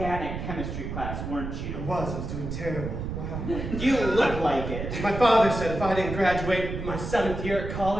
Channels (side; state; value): right; noise; rumble, 6 dB below the sound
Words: chemistry class, weren't I you? was doing terrible. Wow. You look like it. My father said if I didn't graduate my 7th year at